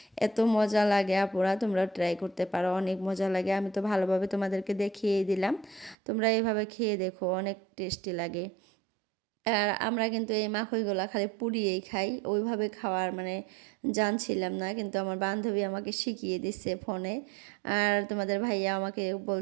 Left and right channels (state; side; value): drops out; left; at 6.0 s